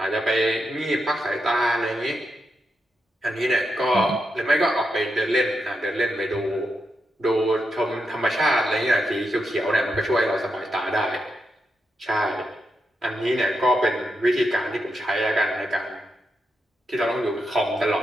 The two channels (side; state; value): both; normal; correlation 0.85